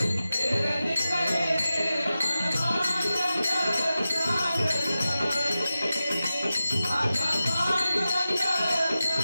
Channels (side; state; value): both; inverted; correlation -0.93